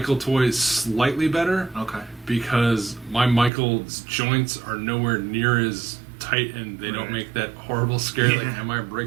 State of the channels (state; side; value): drops out; left; at 3.5 s